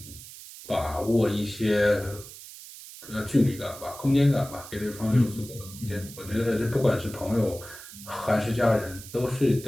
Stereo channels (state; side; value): noise; right; hiss, 15 dB below the sound